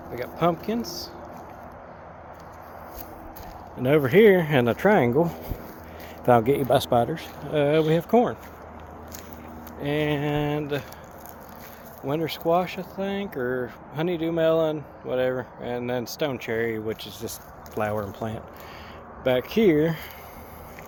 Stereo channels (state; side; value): identical; both; correlation 1.00